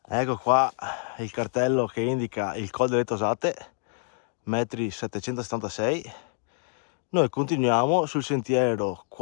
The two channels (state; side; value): silent; right; 60 dB below the other